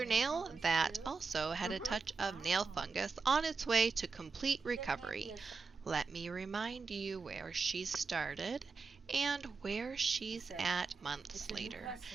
nail that also had a touch of nail fungus on its way to complete recovery. Let me remind you where she started and where she's at months later.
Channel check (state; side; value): quieter; left; 4.7 dB